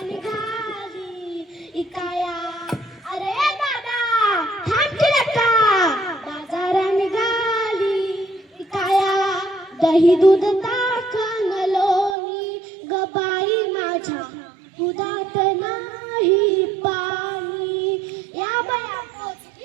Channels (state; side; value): drops out; left; at 12.2 s